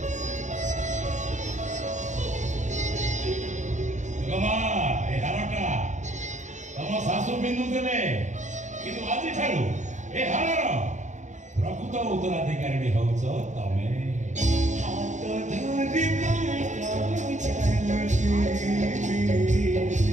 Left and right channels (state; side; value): late; left; 0.35 ms